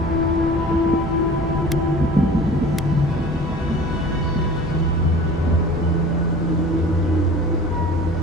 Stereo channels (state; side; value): normal; both; correlation 0.42